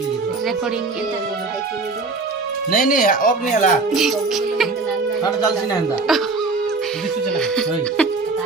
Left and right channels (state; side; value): quieter; left; 3.8 dB